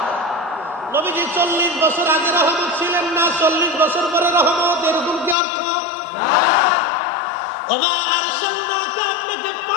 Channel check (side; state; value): right; drops out; at 5.4 s